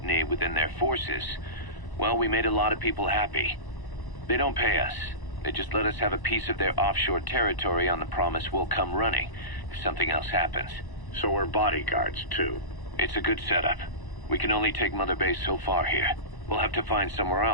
within their forces, well, we made a lot of people happy. They don't pay us. They just let us have a piece of their offshore territory on the promise we'll come running if something else happens. So we're bodyguards, too. It's a good setup. We can only take Mother Base so far here. We'll have to find somewhere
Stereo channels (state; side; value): late; right; 1.0 ms